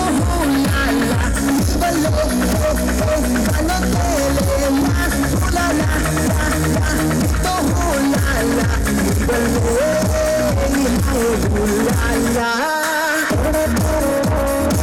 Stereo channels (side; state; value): both; identical; correlation 1.00